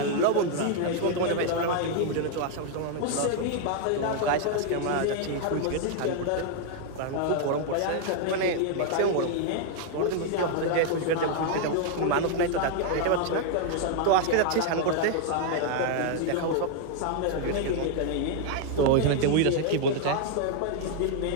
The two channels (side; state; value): both; different; correlation 0.00